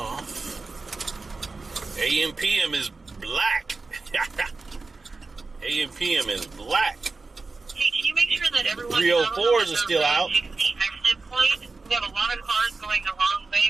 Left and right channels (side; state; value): left; quieter; 3.8 dB